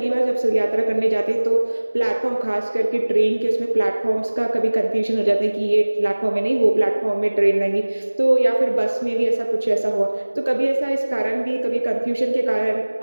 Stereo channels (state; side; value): inverted; both; correlation -1.00